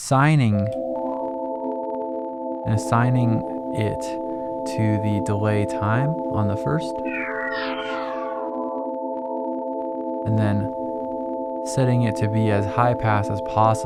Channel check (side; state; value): both; identical; correlation 1.00